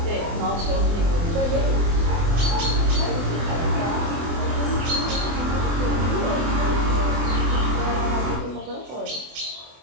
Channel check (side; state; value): left; late; 24 ms